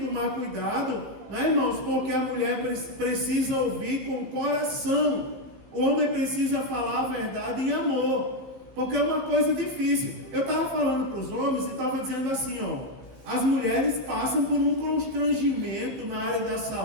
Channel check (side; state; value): left; late; 15 ms